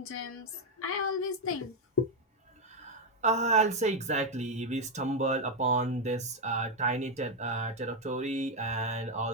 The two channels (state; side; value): normal; both; correlation 0.03